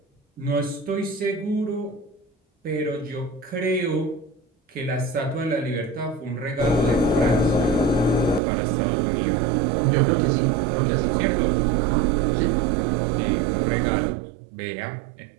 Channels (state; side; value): drops out; left; at 8.4 s